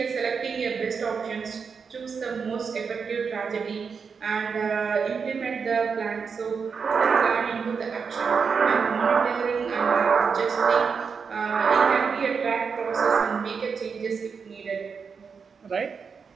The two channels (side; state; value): left; quieter; 5.7 dB